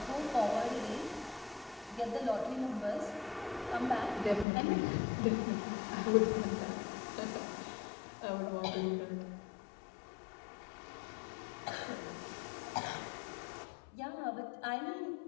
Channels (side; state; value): right; drops out; at 4.5 s